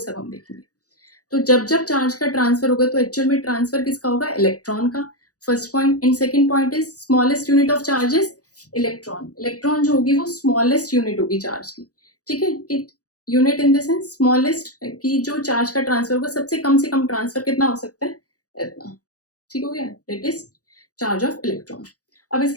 हम देखेंगे. तो जब जब चार्ज का ट्रांसफर होगा तो एक्चुअल में ट्रांसफर किसका होगा, इलेक्ट्रॉन का. First point. And second point is smallest unit of charges electron. Electron जो होगी वो स्मॉलेस्ट यूनिट होगी चार्ज की. ठीक है. Unit in the sense smallest, की जो चार्ज का ट्रांसफर होगा सबसे कम से कम ट्रांसफर कितना हो सकता है, इतना. ठीक हो गया. That is charge of electron. अब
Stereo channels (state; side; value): late; right; 0.67 ms